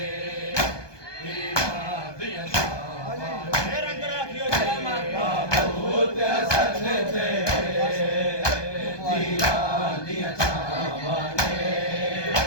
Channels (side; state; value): right; late; 1.2 ms